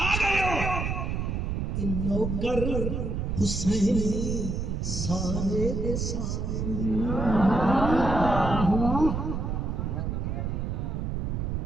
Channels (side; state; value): right; noise; rumble, 1 dB below the sound